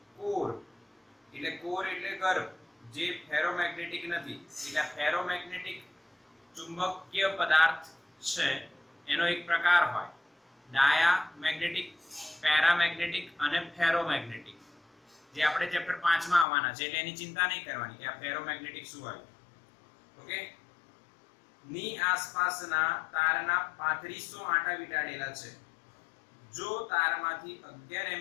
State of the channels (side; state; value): right; drops out; at 16.4 s